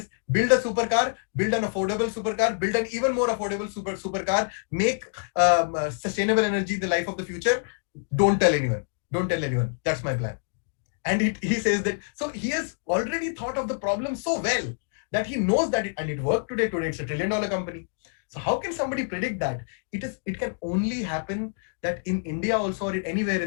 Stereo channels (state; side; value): silent; right; digital silence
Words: build a supercar, build an affordable supercar, build an even more affordable supercar, make sustainable energy the life of the future. Don't tell anyone. Don't tell anyone. That's my plan. And he says that, so he has already thought of the problem so well that he knows that it worked today. Today it's $1 trillion company. So how can somebody predict that? It can only happen that in India also, or anywhere